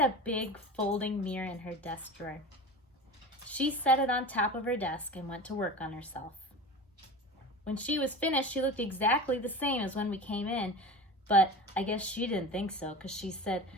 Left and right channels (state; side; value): normal; both; correlation 0.32